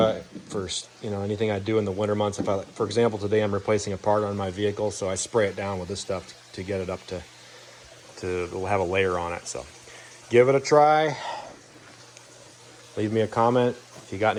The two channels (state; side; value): identical; both; correlation 1.00